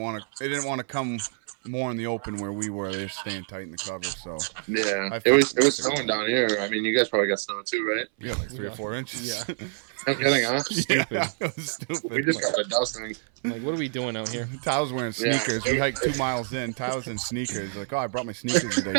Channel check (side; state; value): left; silent; 59 dB below the other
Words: to. They didn't want to come more in the open where we were. They're staying tight in the cover. So Yeah. I It was figured- snowing down here. I mean, you guys probably got snow too, right? yeah, like 3 or 4 inches. Yeah. No kidding, huh? Yeah, it was We stupid. just got a dusting. I'm like, what are we doing out here? Tyler's wearing sneakers. We hiked 2 miles in. Tyler's in sneakers. Like, oh, I brought my sneakers today.